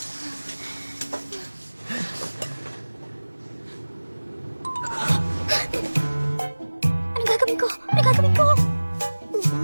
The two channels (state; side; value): inverted; both; correlation -1.00